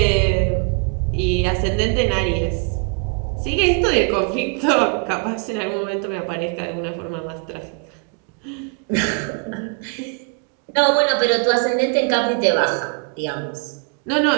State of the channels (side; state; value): left; quieter; 36.2 dB